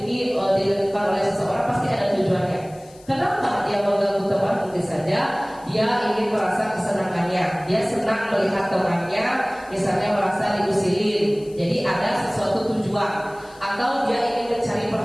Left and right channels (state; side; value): noise; left; hiss, 26 dB below the sound